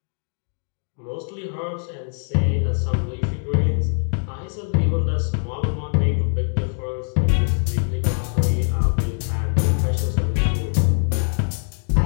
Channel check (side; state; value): right; silent; digital silence